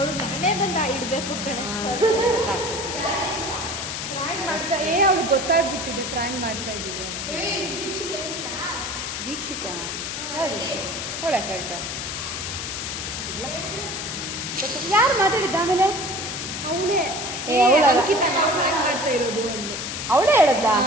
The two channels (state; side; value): noise; left; hiss, 5 dB below the sound